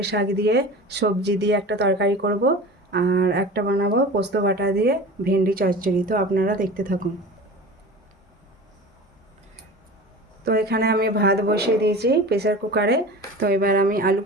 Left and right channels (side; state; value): both; normal; correlation 0.35